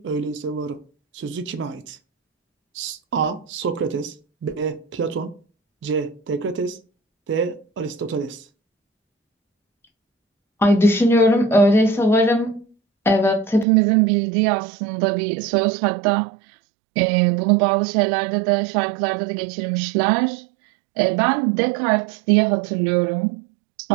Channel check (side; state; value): left; drops out; at 13.7 s